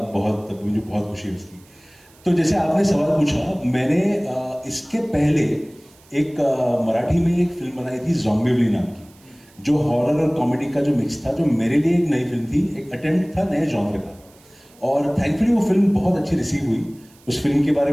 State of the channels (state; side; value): noise; right; hiss, 28 dB below the sound